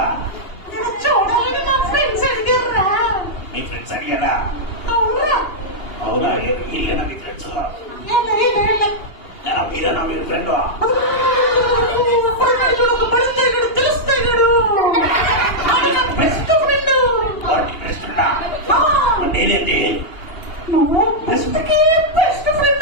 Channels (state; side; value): late; right; 2.8 ms